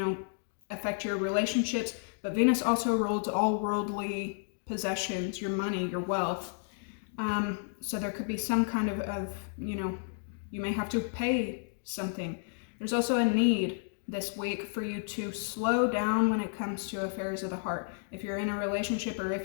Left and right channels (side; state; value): right; silent; digital silence